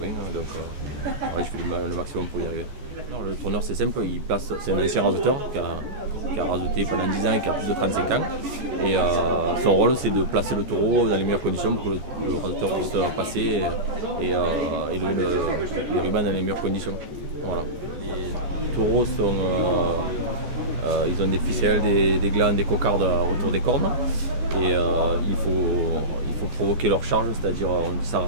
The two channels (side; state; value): left; late; 14 ms